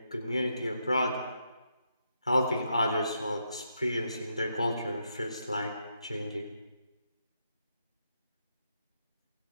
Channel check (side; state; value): both; inverted; correlation -0.80